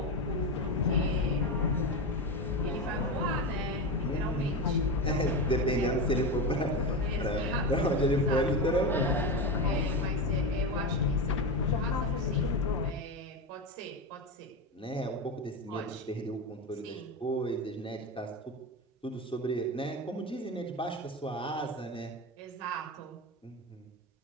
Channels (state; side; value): normal; both; correlation 0.18